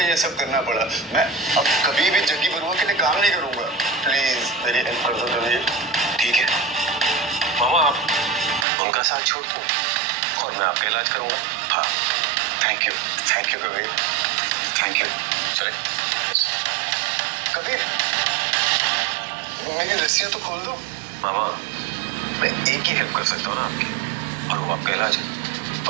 ये सब करना पड़ा। मैं अब कभी भी जग्गी बरुआ के लिए काम नहीं करूंगा, प्लीज मेरी हेल्प कर दो कबीर। ठीक है मामा, आप उनका साथ छोड़ दो और मैं आपका इलाज करूंगा। हाँ, thank you Kabir. Thank you. चले। कबीर, मेरी रस्सियां तो खोल दो। मामा, मैं एक ही हेल्प कर सकता हूँ ना आपकी, और वो आपका इलाज है।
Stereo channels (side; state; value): left; drops out; at 8.7 s